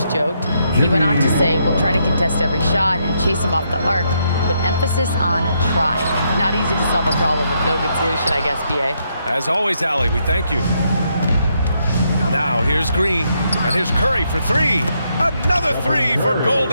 joked. He went on to say, we'll try to contest every shot and chase him off the arc, but emphasis on try. Not easy to solve a problem with no good solution, I guess, B.A. As always, Allie, we thank you. Now here's Green, and here's Curry for 3. Another 3 for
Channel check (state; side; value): inverted; both; correlation -0.77